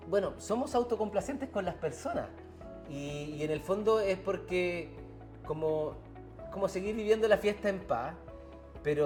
bueno, somos autocomplacentes con las personas. Y en el fondo es porque como seguir viviendo la fiesta en paz,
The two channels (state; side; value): identical; both; correlation 1.00